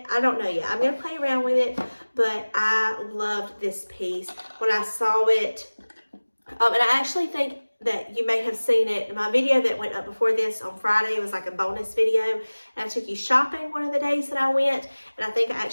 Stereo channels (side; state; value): both; inverted; correlation -1.00